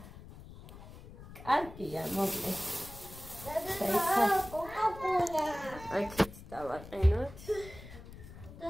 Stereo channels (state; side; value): noise; left; rumble, 16 dB below the sound